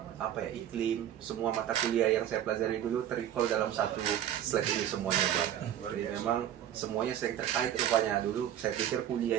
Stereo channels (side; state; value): left; quieter; 10.9 dB